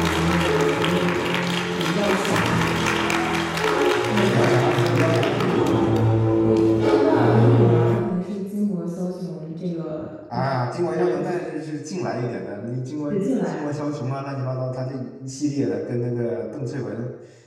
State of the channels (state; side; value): identical; both; correlation 1.00